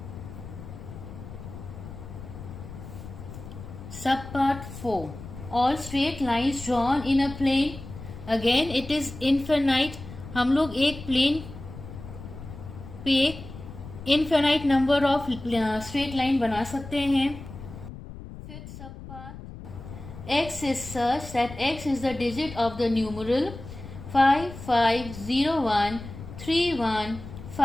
Sub part 4, all straight lines drawn in a plane, again it is infinite. हम लोग एक plane पे infinite number of straight line बना सकते हैं. Fifth sub part, x is such that x is the digit of the numeral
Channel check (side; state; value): left; noise; rumble, 13 dB below the sound